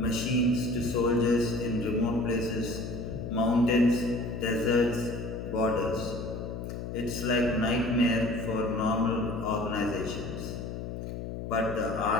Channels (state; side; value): noise; left; hum, 7 dB below the sound